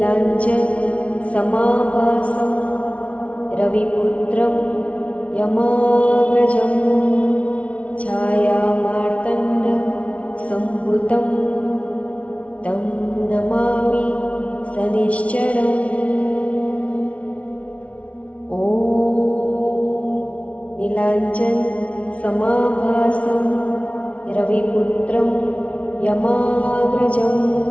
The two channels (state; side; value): late; right; 0.064 ms